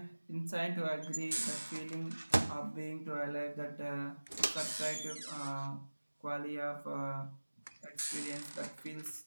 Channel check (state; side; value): inverted; both; correlation -1.00